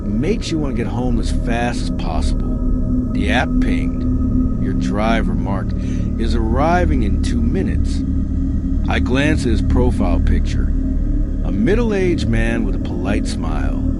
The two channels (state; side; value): identical; both; correlation 1.00